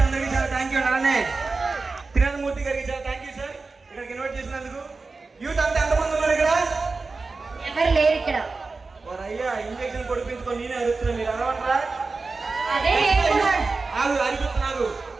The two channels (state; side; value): quieter; left; 3.9 dB